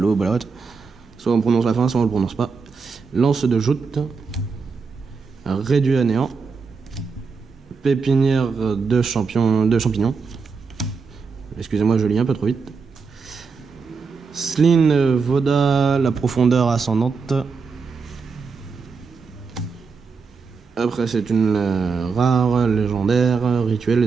balotte. Soit on prononce la fin, soit on le prononce pas. Lance de joute. Réduit à néant. Pépinière de champignons. Excusez-moi, je lis un peu trop vite. Sline Voda, la profondeur ascendante. Après, c'est une rare, légendaire, rituel,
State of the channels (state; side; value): quieter; left; 5.0 dB